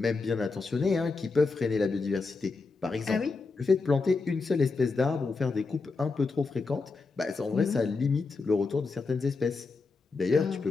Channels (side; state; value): right; quieter; 4.1 dB